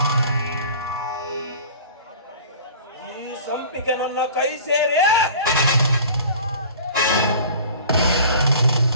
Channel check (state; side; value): inverted; both; correlation -0.43